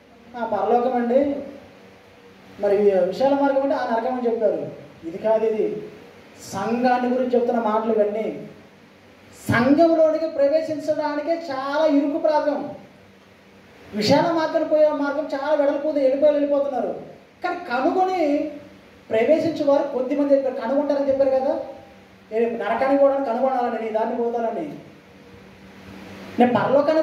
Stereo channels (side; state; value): both; identical; correlation 1.00